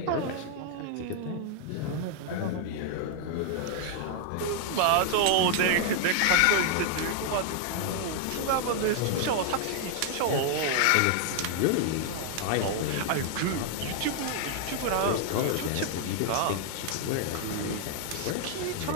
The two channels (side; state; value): both; different; correlation 0.00